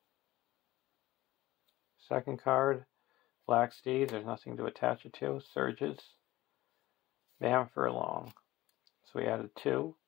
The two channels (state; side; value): quieter; right; 17.0 dB